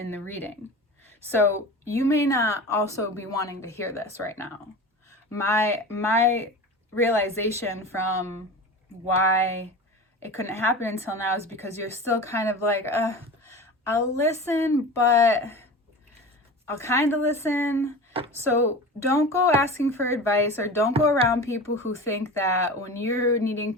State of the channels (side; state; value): both; normal; correlation 0.32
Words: the reading. So you may not also be wanting to hear this right now. My realization from why it couldn't happen until now is because you're still kind of like, I'll listen, but I'll kind of listen. So don't go asking for advice, or don't go around people who think that when you're needing